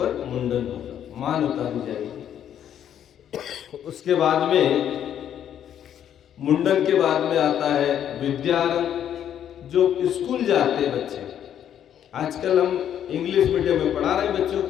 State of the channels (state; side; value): quieter; right; 9.8 dB